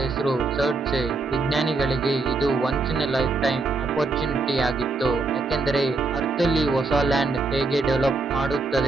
ಹೆಸರು ಸರ್ಡ್ಸೆ. ವಿಜ್ಞಾನಿಗಳಿಗೆ ಇದು once in a life time opportunity ಆಗಿತ್ತು, ಯಾಕೆಂದರೆ ಅರ್ತ್ ಅಲ್ಲಿ ಹೊಸ ಲ್ಯಾಂಡ್ ಹೇಗೆ ಡೆವಲಪ್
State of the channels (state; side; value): quieter; left; 3.7 dB